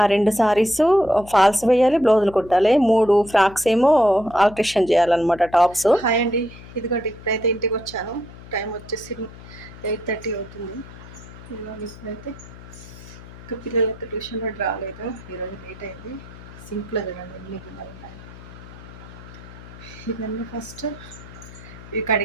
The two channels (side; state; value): left; noise; hum, 17 dB below the sound